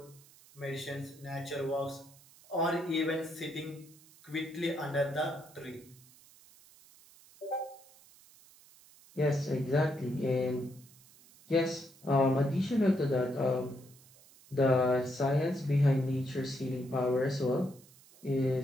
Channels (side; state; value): right; noise; hiss, 25 dB below the sound